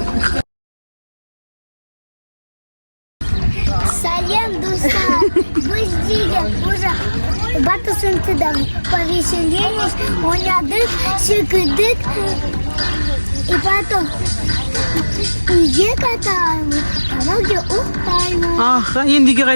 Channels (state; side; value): inverted; both; correlation -1.00